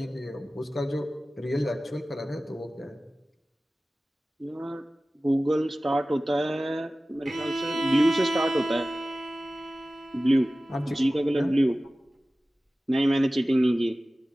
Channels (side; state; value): both; normal; correlation 0.96